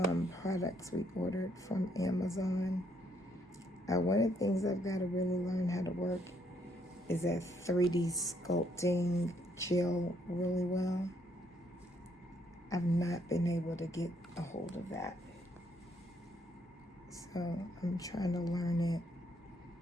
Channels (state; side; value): normal; both; correlation 0.71